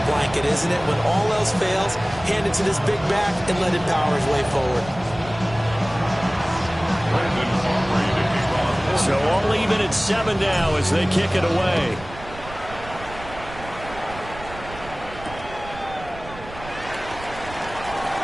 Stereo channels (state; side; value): noise; right; rumble, 15 dB below the sound